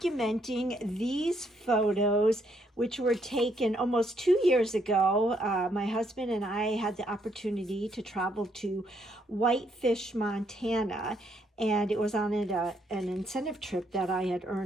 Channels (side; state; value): both; normal; correlation 0.72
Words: these photos which were taken almost 2 years ago. My husband and I had the opportunity to travel to Whitefish, Montana, and it was on an incentive trip that I had